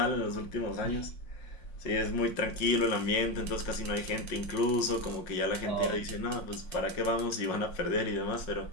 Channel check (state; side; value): late; right; 5.5 ms